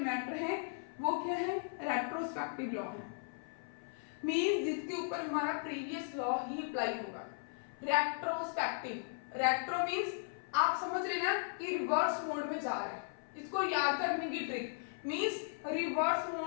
मैटर हैं, वो क्या है, रेट्रोस्पेक्टिव लॉ है, मींस जिसके ऊपर हमारा प्रीवियस लॉ ही अप्लाई होगा। रेट्रोस्पेक्टिव, रेट्रो मींस आप समझ रहे ना कि रिवर्स मोड में जा रहा है, इसको याद करने की ट्रिक, मींस रिवर्स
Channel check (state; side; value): silent; right; 53 dB below the other